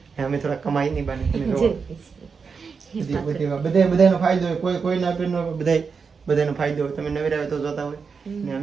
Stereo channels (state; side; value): quieter; left; 5.5 dB